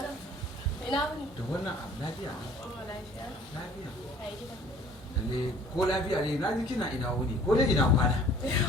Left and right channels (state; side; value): normal; both; correlation 0.53